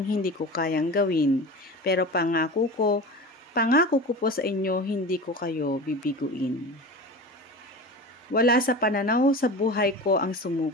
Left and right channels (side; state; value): both; normal; correlation 0.31